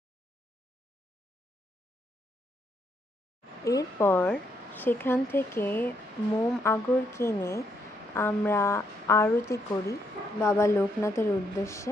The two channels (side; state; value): both; normal; correlation 0.75